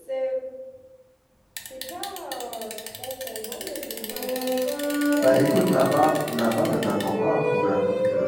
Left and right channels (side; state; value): both; identical; correlation 1.00